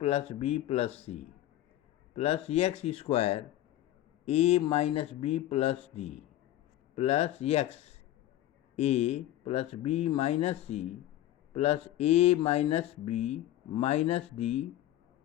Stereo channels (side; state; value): right; quieter; 13.7 dB